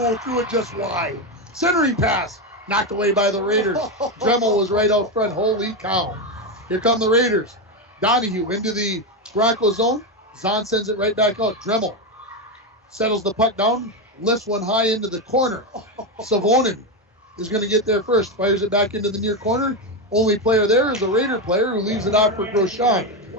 threw it just wide. Centering pass. Knocked away by the Raiders. Dremel was right out front. Holy cow. Here come the Raiders. Donahue into the Bronco zone. Zahn sends it right back out. Dremel settles the puck down. Lifts one high into the corner. Savonin is going to get there first. Fires it back into the near corner. Only player there is a Raider player who leaves it out for Grosjean.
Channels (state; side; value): normal; both; correlation 0.10